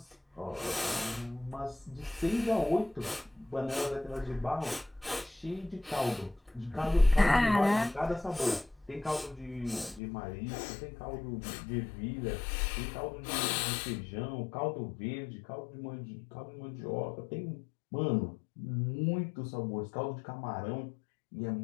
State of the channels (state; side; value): drops out; right; at 10.0 s